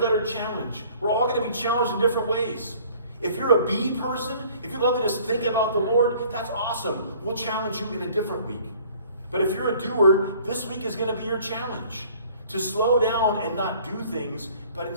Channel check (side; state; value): both; inverted; correlation -0.53